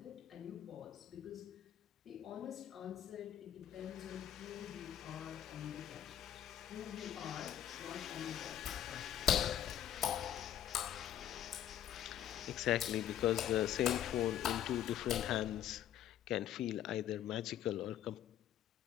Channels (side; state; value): right; quieter; 10.9 dB